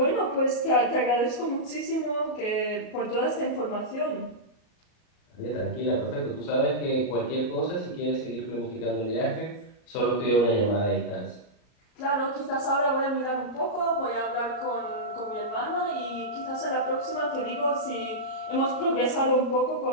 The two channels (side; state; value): right; late; 37 ms